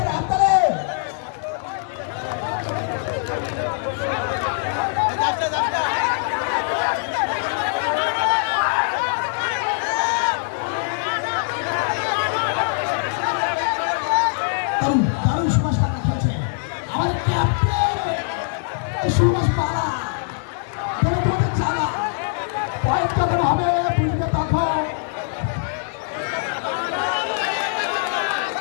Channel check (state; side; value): silent; right; digital silence